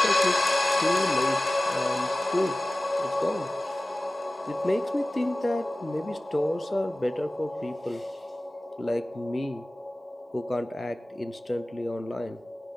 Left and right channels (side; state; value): both; normal; correlation 0.97